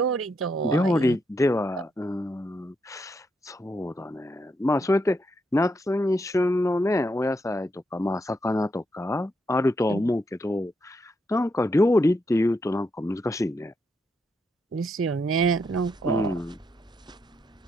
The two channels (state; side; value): normal; both; correlation 0.79